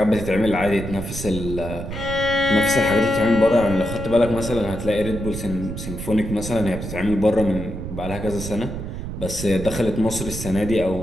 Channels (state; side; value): noise; right; rumble, 7 dB below the sound